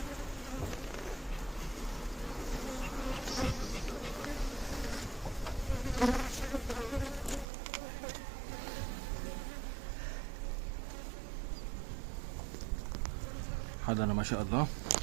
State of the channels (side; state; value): left; drops out; at 7.5 s